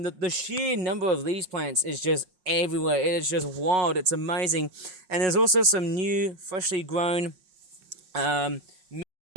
The sheer number of these plants is just everywhere. It is just wild. It's amazing. And there's also some new, freshly grown mint,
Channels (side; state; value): left; late; 5.4 ms